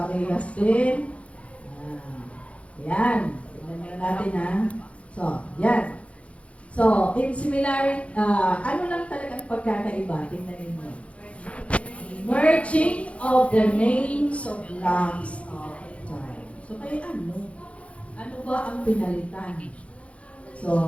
din. Yan. Tingnan natin ha. So, yan. So, in similar, ano lang talagang pagkakaiba? Tingnan ninyo. Merging of the names of blocks of time. So, kaya ano? Ano ba ang pinalitan?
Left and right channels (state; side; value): late; right; 0.062 ms